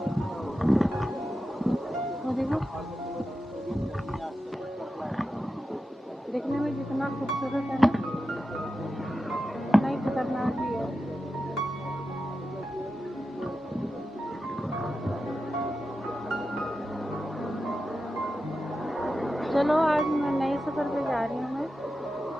वो देखो, दिखने में जितना खूबसूरत है ना, उतना ही खतरनाक भी है। चलो आज मैं नए सफ़र पे जा रही हूँ। मैं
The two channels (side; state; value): both; normal; correlation 0.91